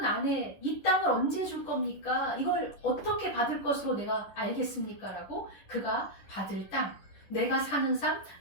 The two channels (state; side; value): late; right; 10 ms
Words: 안에 이 땅을 언제 줄 겁니까? 이걸 어떻게 받을 것으로 내가 알겠습니까? 라고 그가 받을 땅, 내가 사는 삶,